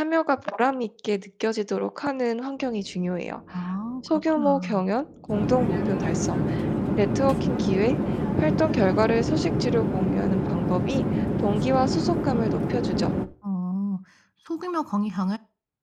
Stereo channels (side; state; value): both; identical; correlation 1.00